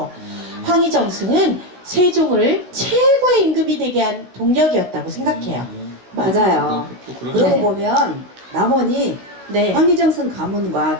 황희정승은 세종을 최고의 임금이 되게 한 동력이었다고 생각해요. 맞아요. 또 그러네. 그러고 네. 보면 남원이 네. 황희정승 가문과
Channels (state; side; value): late; left; 16 ms